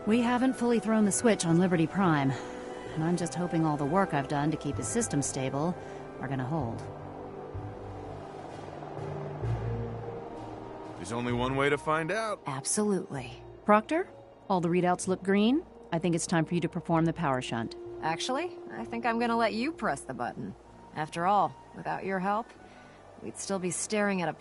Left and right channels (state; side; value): identical; both; correlation 1.00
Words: We haven't fully thrown the switch on Liberty Prime, and I'm just hoping all the work I've done to keep his system stable are gonna hold. There's only one way to find out. Absolutely. Proctor, all the readouts look green. I think it's time for you to perform the power shunt. Actually, I think I'm gonna let you press the button. After all, without your help, we'd still be staring at a